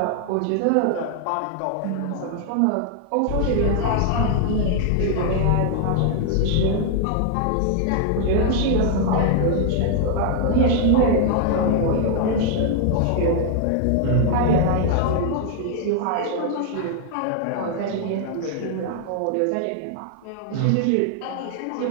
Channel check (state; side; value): different; both; correlation 0.00